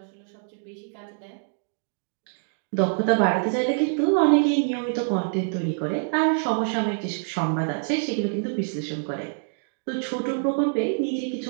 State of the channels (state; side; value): silent; left; digital silence